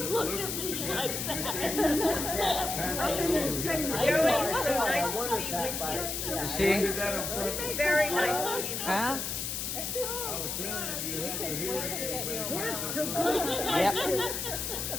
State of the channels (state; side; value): noise; left; hiss, 3 dB below the sound